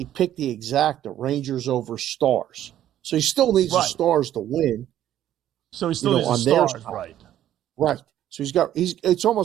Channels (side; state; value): left; quieter; 11.9 dB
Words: picked the Rangers over Stars. So he still needs the Stars to win. So he still needs the Stars, right? Right. So it's